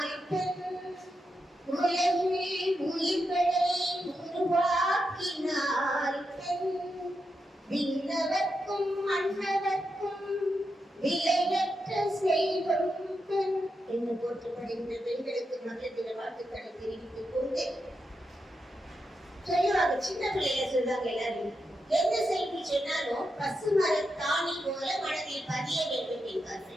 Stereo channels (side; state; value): both; normal; correlation 0.86